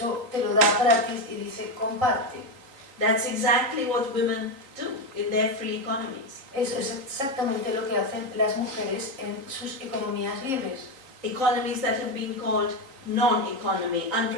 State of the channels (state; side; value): late; left; 3.8 ms